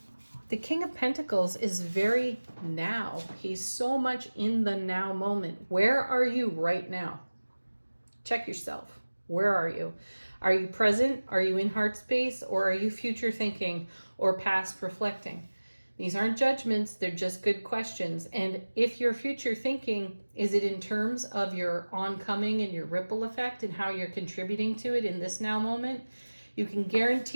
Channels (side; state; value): both; inverted; correlation -1.00